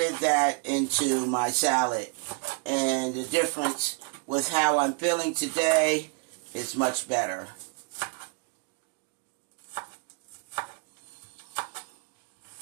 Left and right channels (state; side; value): quieter; left; 36.8 dB